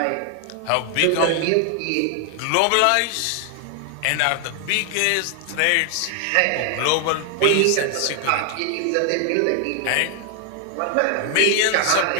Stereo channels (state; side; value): different; both; correlation 0.00